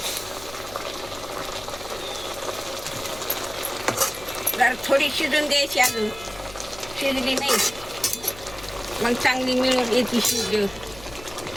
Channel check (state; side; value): noise; left; hum, 18 dB below the sound